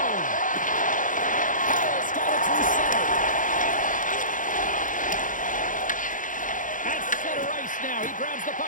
Hall's got it through center. At center ice now. He grabs the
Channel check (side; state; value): right; late; 0.38 ms